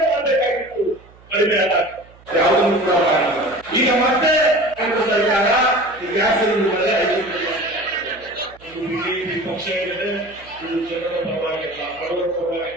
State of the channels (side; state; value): right; noise; hum, 25 dB below the sound